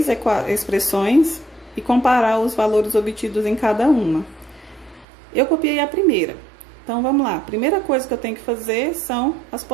expressões e comparar os valores obtidos em cada uma. Eu copiei a primeira. Então, vamos lá. A primeira coisa que eu tenho que fazer são as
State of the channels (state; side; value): drops out; left; at 5.1 s